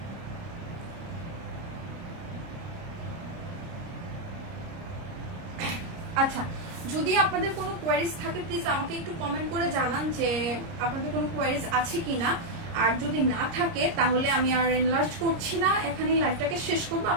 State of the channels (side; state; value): left; late; 30 ms